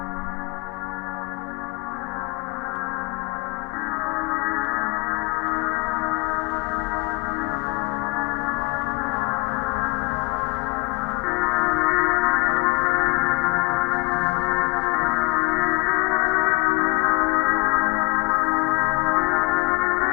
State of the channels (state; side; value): quieter; right; 26.6 dB